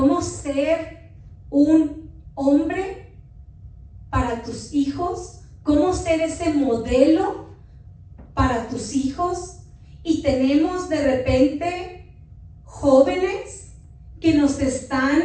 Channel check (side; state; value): both; identical; correlation 1.00